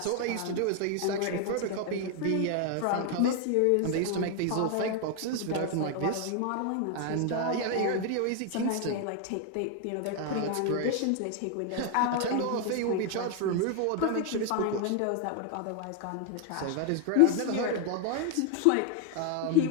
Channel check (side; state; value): both; different; correlation 0.01